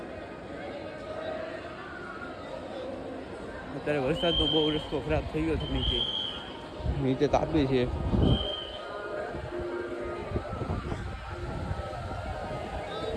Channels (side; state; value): both; identical; correlation 1.00